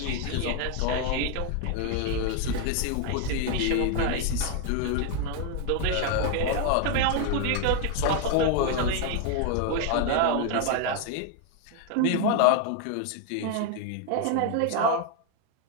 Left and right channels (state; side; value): different; both; correlation 0.01